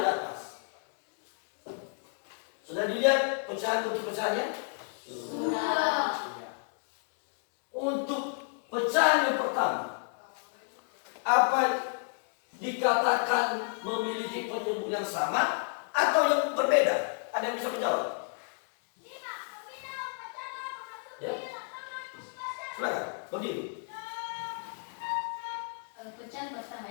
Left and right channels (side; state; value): right; silent; 56 dB below the other